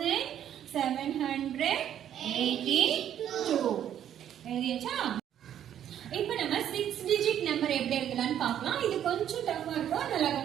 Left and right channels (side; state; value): left; quieter; 10.3 dB